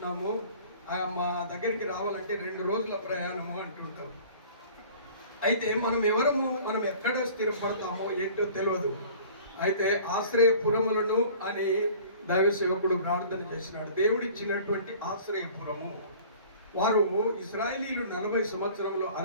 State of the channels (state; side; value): inverted; both; correlation -0.47